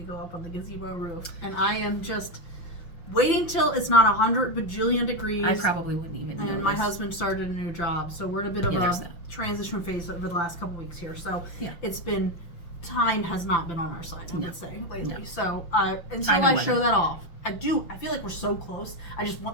go up on the gazebo roof. And I am just waiting till it's not 100 bajillion degrees. I probably wouldn't even know. And my husband started a new job, so we're in a bit of a transition phase over the last couple weeks here. So it's been, time has not been on our side, I would say, lately. No. So until I show that off, I feel like we're so close. I just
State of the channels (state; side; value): late; right; 5.9 ms